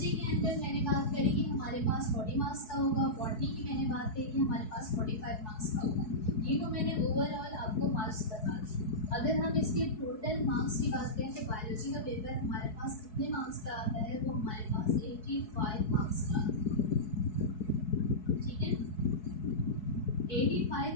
के अंदर मैंने बात करी कि हमारे पास 40 मार्क्स का होगा, बॉटनी की मैंने बात करी कि हमारे पास 45 मार्क्स का होगा। ये तो मैंने ओवरऑल आपको मार्क्स बता दिए। अगर हम इसके टोटल मार्क्स की बात करें तो बायोलॉजी का पेपर हमारे पास कितने मार्क्स का आता है, वो हमारे पास 85 मार्क्स का आता है। ठीक है,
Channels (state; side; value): late; right; 4.7 ms